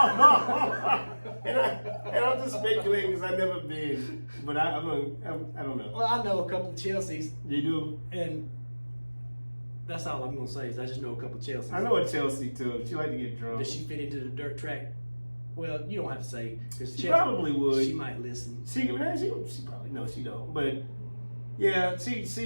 and I'm just speculating because I've never been, but I don't know. Well, I know a couple of Chelseas, You do? and that's all I'm gonna say is I just know a couple of Chelseas. I know a Chelsea too. She like to get drunk. Does she fit into the dirt track? Well, you don't have to say because She probably would. She might listen. She probably no, she don't. But yeah,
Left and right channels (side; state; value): both; inverted; correlation -1.00